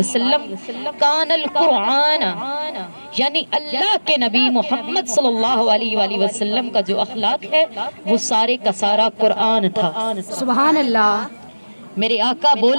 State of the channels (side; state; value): both; inverted; correlation -1.00